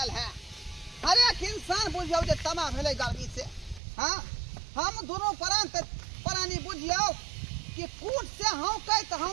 है। हर एक इंसान बुझियौ जे तमा भेलै गर्मी से। हाँ, हम दोनों प्राणी बुझियौ कि कूट से हौकैत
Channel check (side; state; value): left; drops out; at 3.8 s